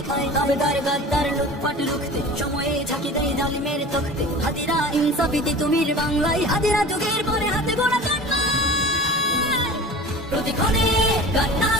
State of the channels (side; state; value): both; normal; correlation 0.38